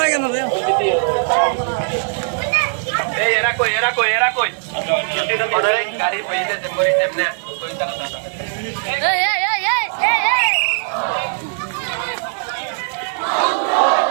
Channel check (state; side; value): silent; left; digital silence